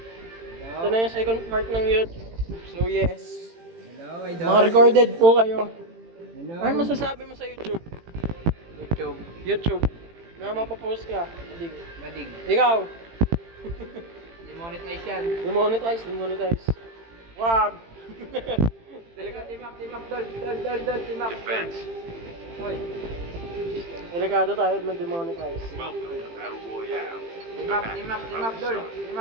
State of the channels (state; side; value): late; left; 18 ms